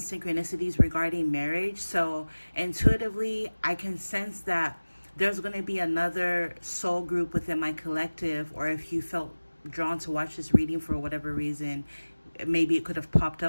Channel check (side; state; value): both; inverted; correlation -1.00